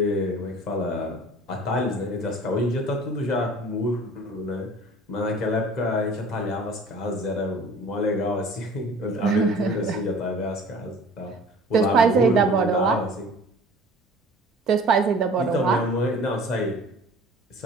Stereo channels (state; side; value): normal; both; correlation 0.46